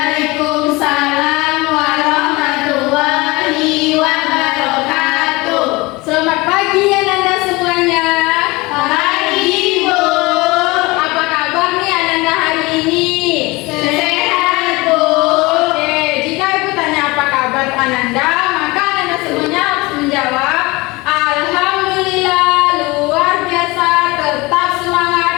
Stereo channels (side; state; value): right; quieter; 23.2 dB